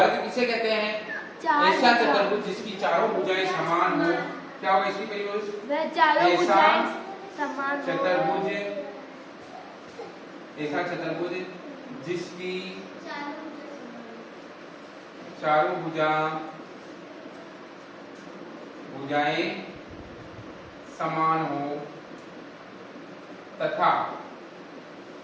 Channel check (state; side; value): identical; both; correlation 1.00